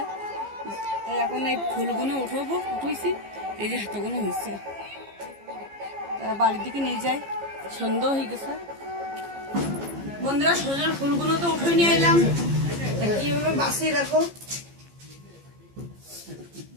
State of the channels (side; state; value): left; late; 15 ms